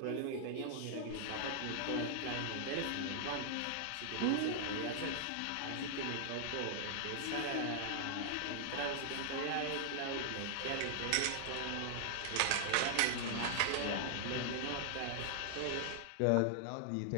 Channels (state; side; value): different; both; correlation -0.01